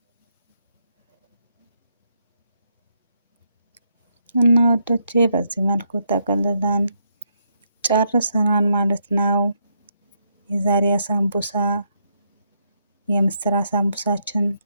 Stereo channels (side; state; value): both; inverted; correlation -0.77